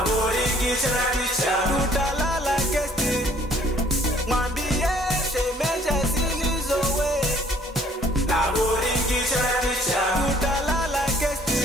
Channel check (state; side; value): normal; both; correlation 0.59